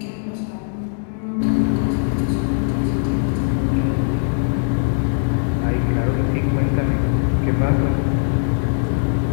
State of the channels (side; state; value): right; silent; 66 dB below the other